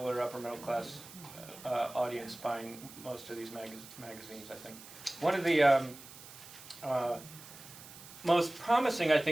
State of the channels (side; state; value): right; noise; hiss, 17 dB below the sound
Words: or upper middle class audience buying most of these magazines, I think. One of the most promising, I